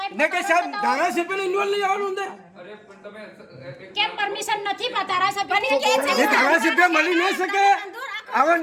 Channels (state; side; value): identical; both; correlation 1.00